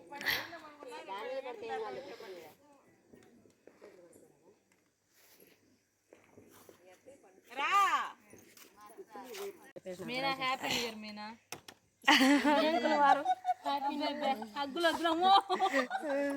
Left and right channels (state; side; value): identical; both; correlation 1.00